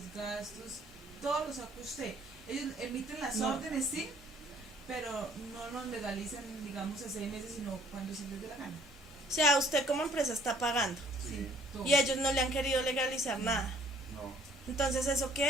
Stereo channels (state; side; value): normal; both; correlation 0.59